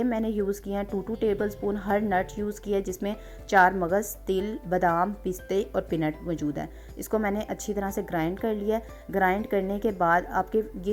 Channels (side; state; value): both; identical; correlation 1.00